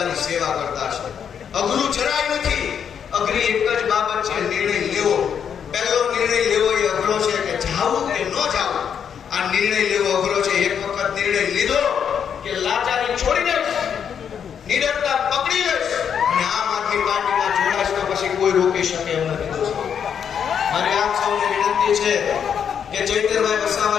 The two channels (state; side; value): quieter; right; 7.8 dB